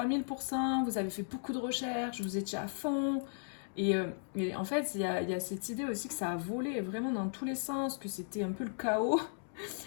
vous avez fait beaucoup de recherches, vous étiez à fond. Et en fait, il y a cette idée aussi que ça a volé vraiment dans tous les sens, que c'était un peu le chaos.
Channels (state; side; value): silent; right; digital silence